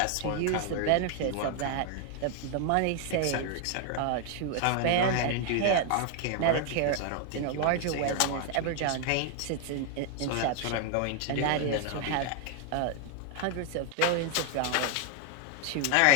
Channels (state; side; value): different; both; correlation 0.00